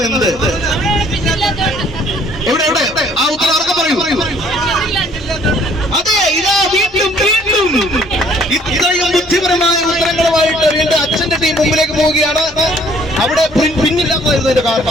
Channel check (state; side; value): normal; both; correlation 0.59